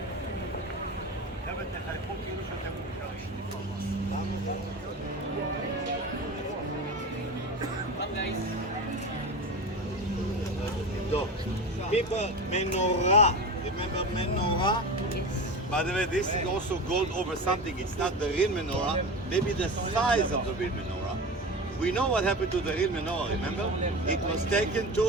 People, menorah. Remember menorah? Yes. By the way, this is also gold over something. It's not the real menorah. Maybe the size of the real menorah. We know what happened to the real menorah. Remember? It was taken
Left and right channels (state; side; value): normal; both; correlation 0.28